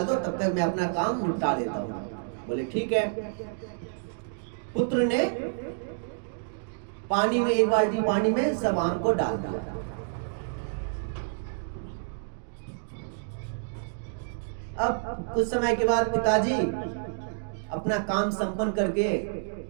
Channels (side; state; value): left; silent; digital silence